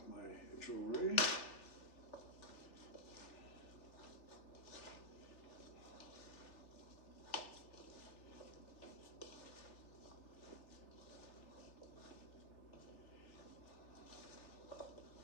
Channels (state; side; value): late; right; 3.3 ms